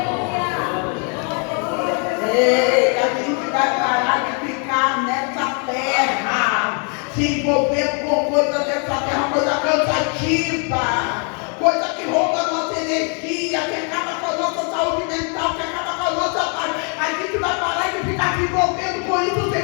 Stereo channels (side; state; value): right; quieter; 39.1 dB